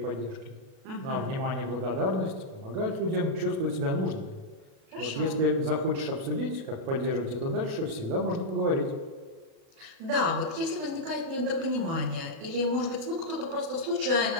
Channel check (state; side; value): late; left; 37 ms